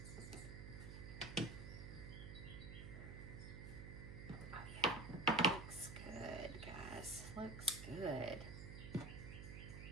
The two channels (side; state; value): right; noise; hum, 8 dB below the sound